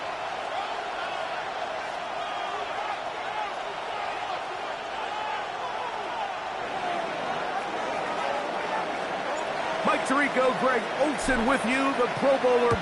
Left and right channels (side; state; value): both; identical; correlation 1.00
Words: Mike Tirico, Greg Olsen with you. The Pro Bowler